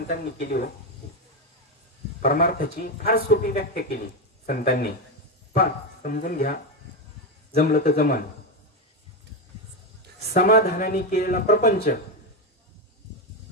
केली हो. परमार्थाची फार सोपी व्याख्या केली संतांनी. पण समजून घ्या, जमलं तर जमन. समाधानाने केलेला प्रपंच,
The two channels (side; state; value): both; normal; correlation 0.11